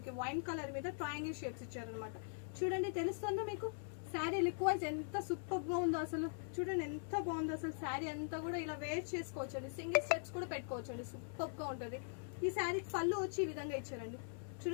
వైన్ కలర్ మీద ట్రయాంగిల్ షేప్స్ ఇచ్చారనమాట. చూడండి తెలుస్తుందో మీకు శారీ లుక్ వైజ్ ఎంత సూపర్ గా ఉందో అసలు. చూడండి ఎంత బాగుందో అసలు. శారీ అంతా కూడా ఇలా వేర్ చేసుకోవచ్చు అండి. సింగిల్ స్టెప్స్ కూడా పెట్టుకోవచ్చు అండి. సూపర్ గా ఉంటది. ఈ శారీకి పళ్ళు వచ్చి ఈ విధంగా ఇచ్చారండి.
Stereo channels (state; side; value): silent; right; digital silence